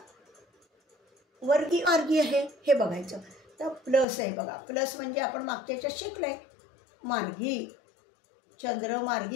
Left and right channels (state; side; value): drops out; right; at 4.0 s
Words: वर्गी मार्गी आहे हे बघायचं. तर प्लस आहे बघा, प्लस म्हणजे आपण मागच्या याच्यात शिकलोय. मार्गी, चंद्र